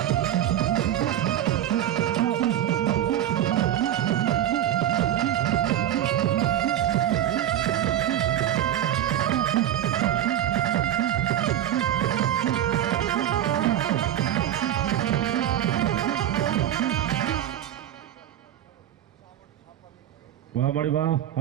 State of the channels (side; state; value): left; quieter; 11.5 dB